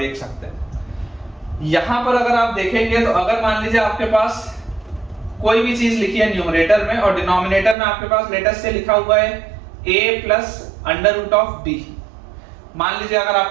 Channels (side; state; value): left; drops out; at 7.8 s